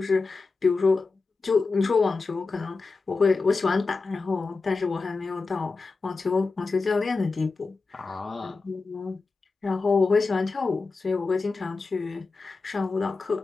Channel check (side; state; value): right; quieter; 4.1 dB